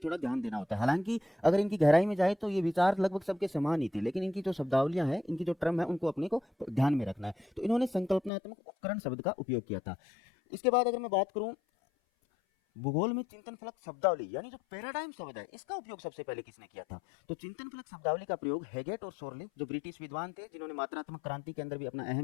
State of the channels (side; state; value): right; drops out; at 8.3 s